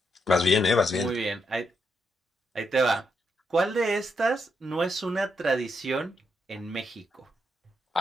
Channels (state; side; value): normal; both; correlation 0.80